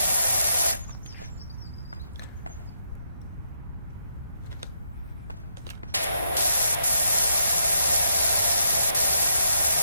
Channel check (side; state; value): both; inverted; correlation -0.76